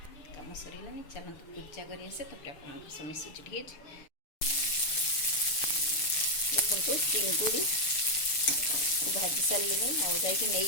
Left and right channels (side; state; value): right; late; 6.9 ms